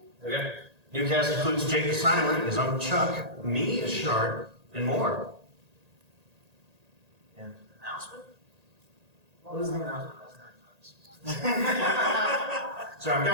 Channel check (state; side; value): late; left; 1.8 ms